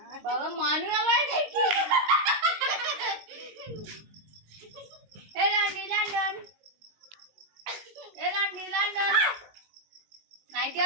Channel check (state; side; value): late; left; 19 ms